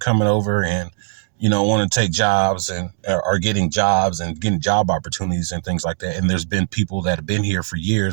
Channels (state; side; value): silent; left; 66 dB below the other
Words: over and, you know, want to take jobs and are getting jobs and getting job opportunities and things like that. And there's been people that have been here for